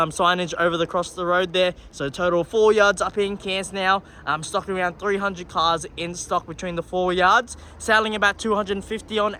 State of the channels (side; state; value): both; identical; correlation 1.00